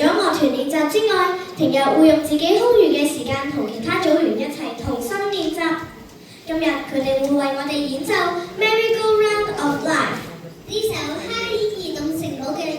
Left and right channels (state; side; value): identical; both; correlation 1.00